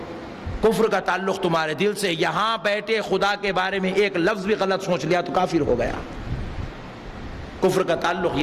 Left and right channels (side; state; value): both; identical; correlation 1.00